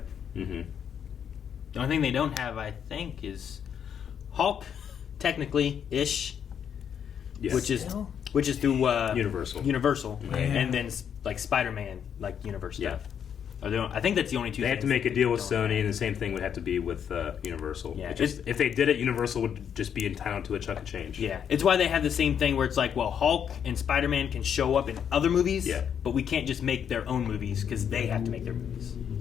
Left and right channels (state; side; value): quieter; right; 8.2 dB